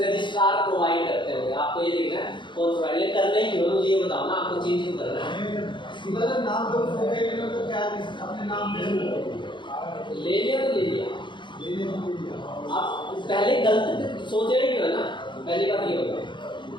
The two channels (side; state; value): right; late; 0.23 ms